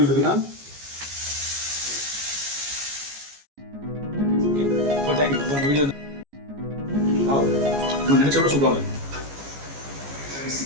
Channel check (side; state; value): left; late; 14 ms